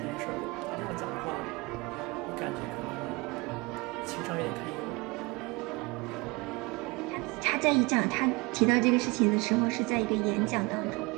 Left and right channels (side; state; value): left; quieter; 26.2 dB